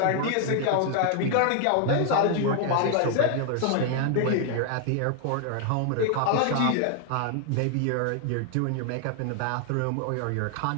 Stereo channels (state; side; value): different; both; correlation 0.00